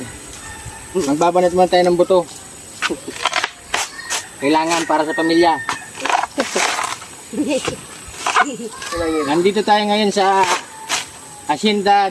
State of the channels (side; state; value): both; identical; correlation 1.00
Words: Magbabanat muna tayo ng buto. Kailangan para sa pamilya. Nandito tayo ngayon sa Hacienda